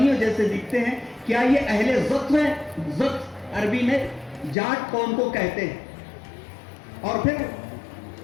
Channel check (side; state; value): right; drops out; at 4.5 s